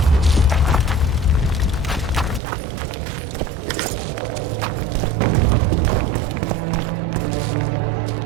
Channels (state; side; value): drops out; left; at 2.4 s